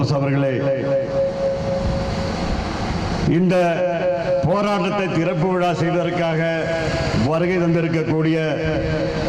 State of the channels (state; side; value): identical; both; correlation 1.00